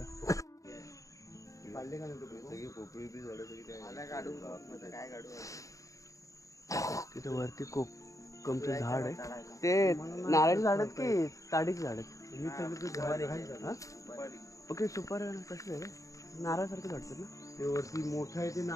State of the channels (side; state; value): right; late; 0.16 ms